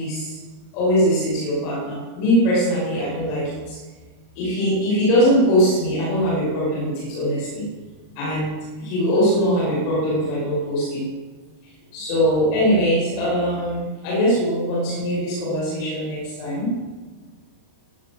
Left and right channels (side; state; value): right; late; 39 ms